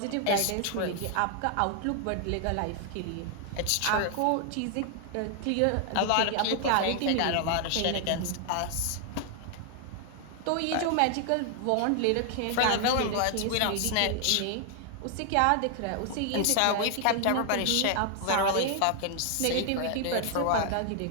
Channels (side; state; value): both; different; correlation 0.00